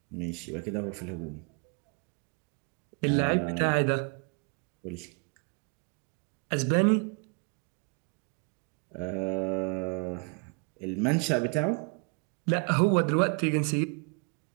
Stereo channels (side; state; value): left; quieter; 36.5 dB